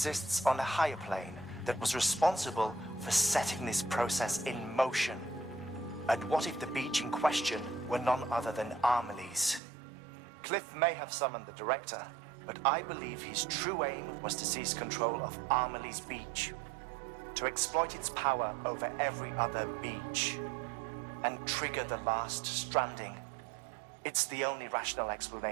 on a higher plane, that was responsible for setting this process in motion? And what if the beach in question were none other than Amelie's? Cliff may have summoned the director, but I believe his true aim was to seize control of Amelie's beach, to exploit its power over every other beach, and trigger the last stranding. It's the only rational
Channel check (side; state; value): left; drops out; at 9.6 s